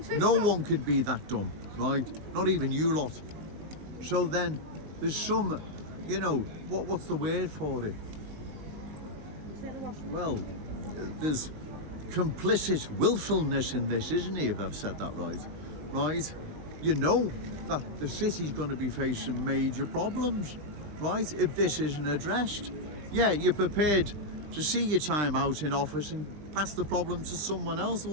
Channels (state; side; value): late; left; 20 ms